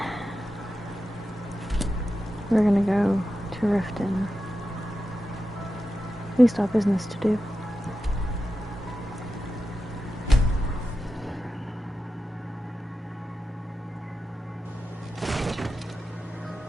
we're gonna go to Riften. We still have business to do.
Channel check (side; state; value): both; normal; correlation 0.91